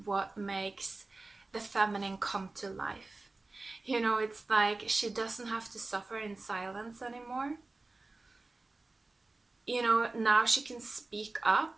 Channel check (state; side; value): quieter; left; 3.3 dB